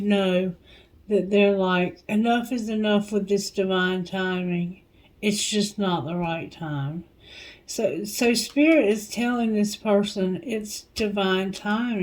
know that they're like, enough is enough with this divine timing. It's just not the right time. So Spirit is telling this person it's divine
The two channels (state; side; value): identical; both; correlation 1.00